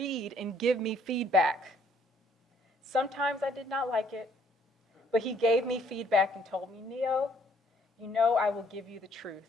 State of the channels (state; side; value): normal; both; correlation 0.64